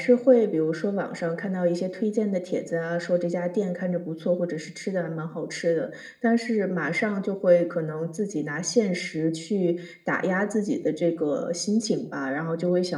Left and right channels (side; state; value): both; identical; correlation 1.00